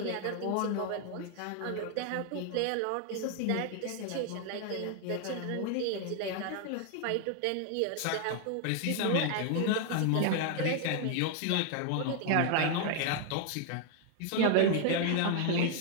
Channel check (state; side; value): different; both; correlation 0.00